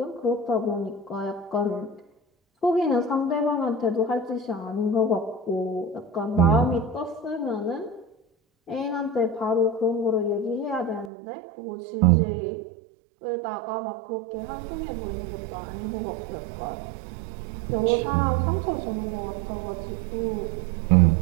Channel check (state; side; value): drops out; left; at 11.1 s